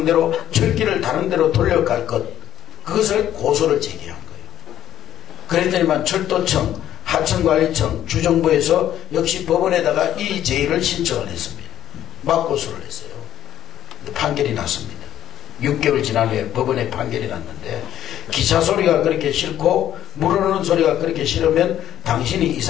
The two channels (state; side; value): quieter; right; 11.7 dB